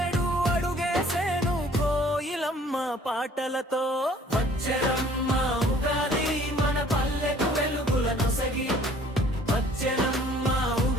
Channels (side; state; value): both; normal; correlation 0.55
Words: అడుగేసేను కోయిలమ్మ పాటలతో వచ్చెనమ్మ ఉగాది మన పల్లెకు వెలుగుల నొసగి వచ్చెనమ్మ